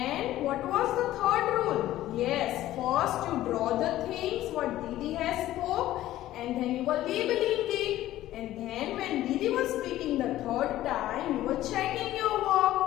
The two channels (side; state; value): right; quieter; 14.4 dB